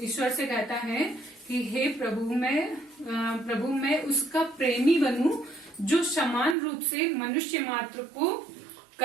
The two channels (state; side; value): drops out; left; at 6.6 s